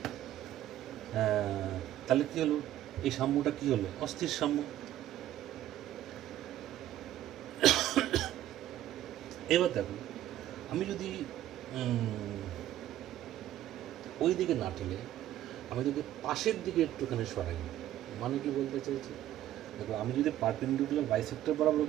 তাহলে কী হলো, এই সাম্যটা কী হলো, অস্থির সাম্য। এবার দেখো আমি যদি ওই দিকে না ঠেলে আমি যদি পাশের দিকে একটুখানি সরাই, মানে কি বলতে চাইছি, দেখো আমি যদি পারপেন্ডিকুলার বাইসেক্টর বরাবর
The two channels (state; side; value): quieter; left; 12.9 dB